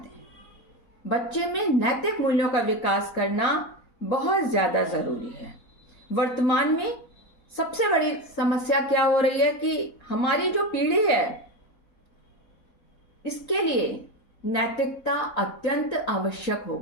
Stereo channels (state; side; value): late; right; 4.1 ms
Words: बच्चे में नैतिक मूल्यों का विकास करना बहुत ज्यादा जरूरी है। वर्तमान में सबसे बड़ी समस्या क्या हो रही है कि हमारी जो पीढ़ी है इसके लिए नैतिकता अत्यंत आवश्यक हो